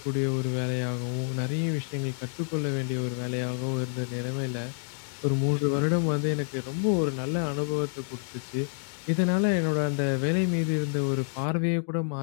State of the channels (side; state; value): right; silent; digital silence